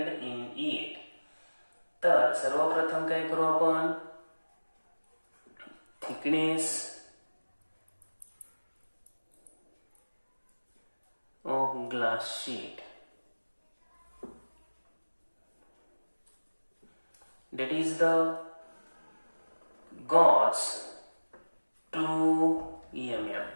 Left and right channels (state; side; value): inverted; both; correlation -1.00